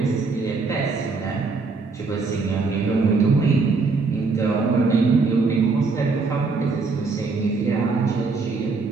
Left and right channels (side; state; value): left; quieter; 4.2 dB